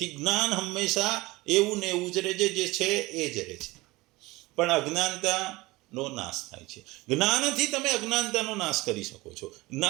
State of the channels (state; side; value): quieter; left; 20.8 dB